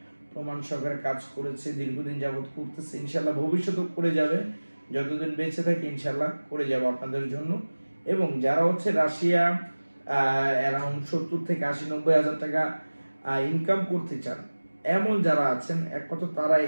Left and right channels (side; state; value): both; inverted; correlation -1.00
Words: প্রমাণ সহকারে কাজ করেছে, দীর্ঘদিন যাবত করতেছে, ইনশাল্লাহ ভবিষ্যতেও করে যাবে, যতদিন বেঁচে থাকে ইনশাল্লাহ করে যাবো আপনাদের জন্য। এবং যারা রাশিয়া অ্যারাউন্ড 70 থেকে 80-90 হাজার টাকা ইনকাম করতে চান, এমন যারা আছেন একমাত্র তারাই